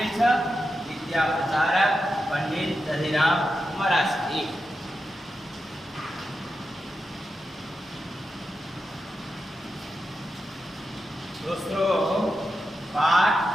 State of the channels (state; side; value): normal; both; correlation 0.89